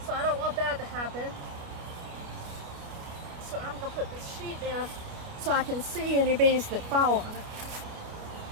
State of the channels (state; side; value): late; left; 29 ms